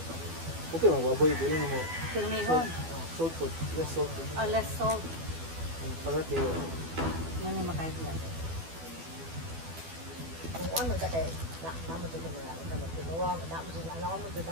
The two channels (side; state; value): left; late; 12 ms